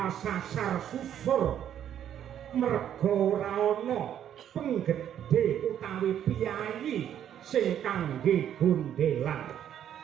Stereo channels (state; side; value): quieter; left; 10.0 dB